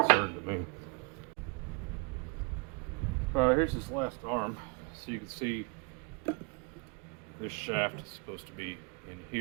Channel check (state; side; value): quieter; left; 33.3 dB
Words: concern to me. Here's this last arm, so you can see this shaft is supposed to be in